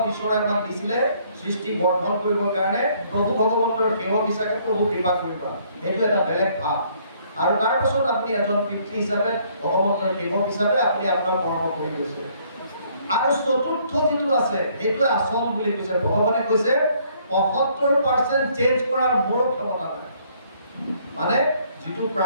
ঈশ্বৰে আমাক দিছিলে সৃষ্টি বৰ্ধন কৰিবৰ কাৰণে প্ৰভু ভগৱন্তৰ সেৱক হিচাপে প্ৰভু কৃপা কৰিবা, এইটো এটা বেলেগ ভাৱ। আৰু তাৰ পাছত আপুনি এজন পিতৃ হিচাপে ভগৱন্তৰ সেৱক হিচাপে আপুনি আপোনাৰ কৰ্ম কৰি গৈছে। আৰু চতুৰ্থ যিটো আছে সেইটোৱে আচল বুলি কৈছে। ভগৱানে কৈছে ৭৫% চেঞ্জ কৰাৰ মোৰ ক্ষমতা নাই। মানে যিটো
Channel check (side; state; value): both; inverted; correlation -0.64